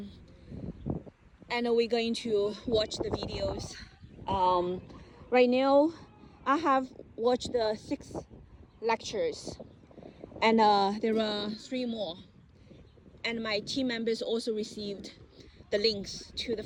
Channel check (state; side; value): identical; both; correlation 1.00